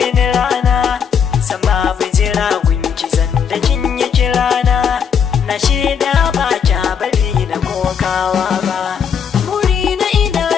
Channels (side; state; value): right; quieter; 7.2 dB